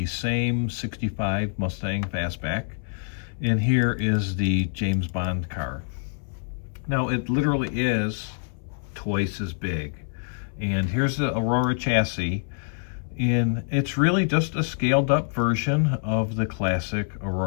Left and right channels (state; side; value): silent; right; 60 dB below the other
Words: same 65 Mustang Fastback, and here is the James Bond car. Now, it literally is twice as big. And here's the Aurora chassis. And it's really just a scaled up version of the classic